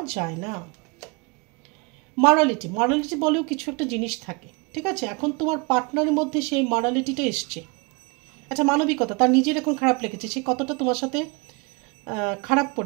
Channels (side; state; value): left; quieter; 29.2 dB